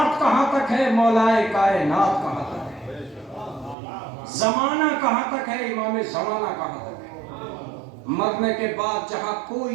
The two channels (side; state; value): left; drops out; at 3.8 s